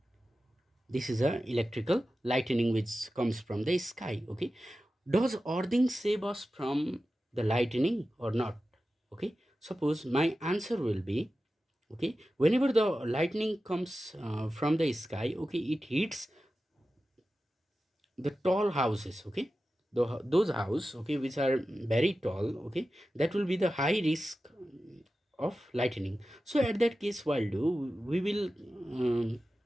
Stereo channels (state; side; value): normal; both; correlation 0.94